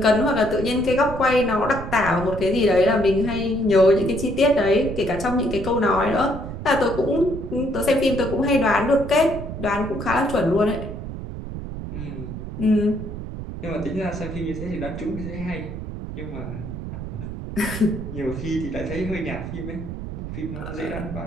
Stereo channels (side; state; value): right; noise; rumble, 8 dB below the sound